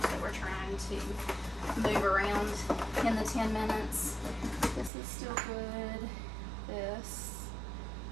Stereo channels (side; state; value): left; drops out; at 4.9 s